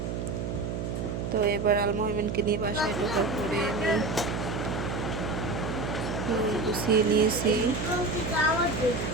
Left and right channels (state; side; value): noise; right; hum, 3 dB below the sound